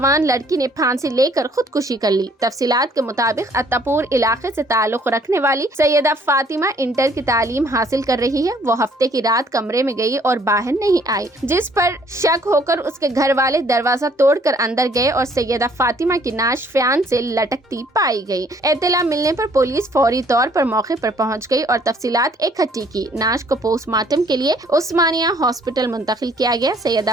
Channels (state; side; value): normal; both; correlation 0.61